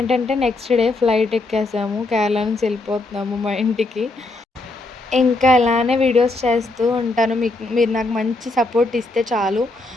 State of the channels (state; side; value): quieter; right; 3.0 dB